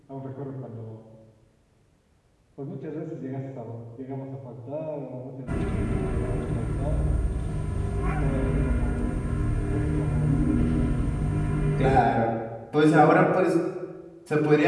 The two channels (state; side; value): identical; both; correlation 1.00